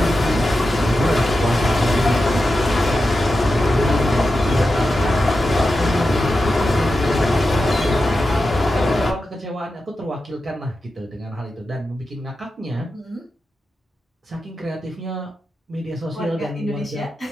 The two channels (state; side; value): normal; both; correlation 0.90